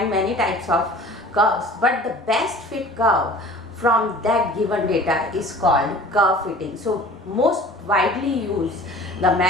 many types of curves, but the best fit curve from that given data is called curve fitting. So most widely used the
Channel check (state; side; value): normal; both; correlation 0.45